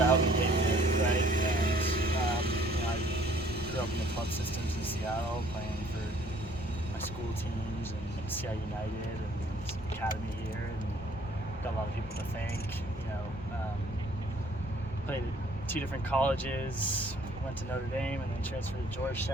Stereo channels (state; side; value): normal; both; correlation 0.59